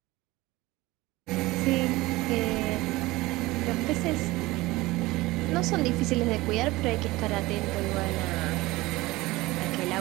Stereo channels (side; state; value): left; quieter; 19.9 dB